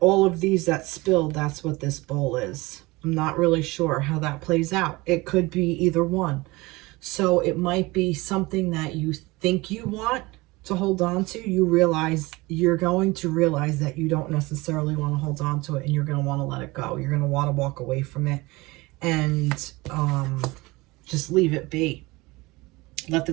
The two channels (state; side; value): quieter; left; 22.3 dB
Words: all of these that spilled, that's what this bowl is. I'm not really sure how that plays out. It could be either one. So it might be something that you think you want to hold on to. You realize, you're going to realize that you don't necessarily want to hold on to it, and you're going to want to let it go. You're going to want to walk away from it and just leave it be. Let the